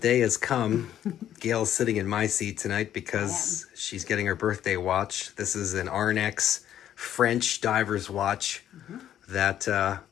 has come. Gail's sitting in my seat tonight because she's getting her birthday watch. This is an Arnex French diver's watch that I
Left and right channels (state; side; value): quieter; right; 11.0 dB